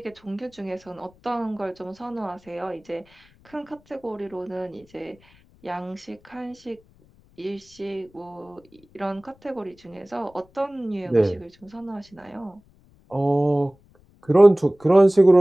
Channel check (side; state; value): left; noise; rumble, 30 dB below the sound